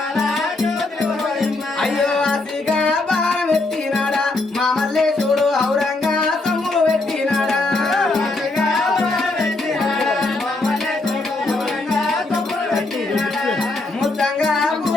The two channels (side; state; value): right; quieter; 3.1 dB